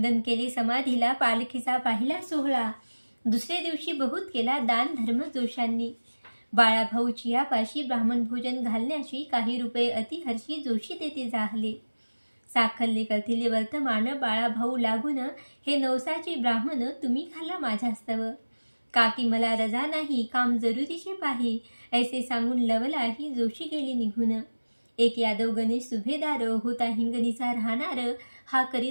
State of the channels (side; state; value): both; inverted; correlation -1.00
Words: केले समाधीला पालखीचा पाहिला सोहळा दुसरे दिवशी बहुत केला दान धर्म जोशांनी. बाळाभाऊ चियापाशी ब्राह्मण भोजन घालण्याशी काही रुपये अतिहर्षी जोशी तेथे जाहले. साखल्ले करथिले वर्तमान बाळाभाऊ लागून हे नवसाचे ब्राह्मण तुम्ही घाला माझ्यास्तव. काकी मला रजा नाही काम जरुरीचे पाही ऐसे सांगून लवलाही जोशी गेली निघून. एक यादव गणेश सुभेदार होता हिंगणीचा राहणार हा